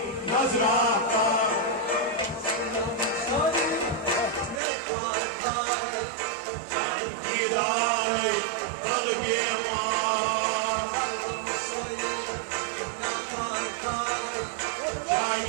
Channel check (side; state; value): left; drops out; at 4.6 s